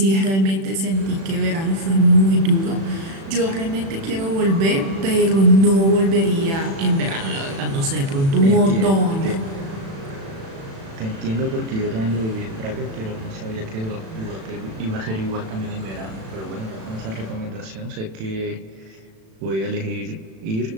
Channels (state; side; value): late; left; 36 ms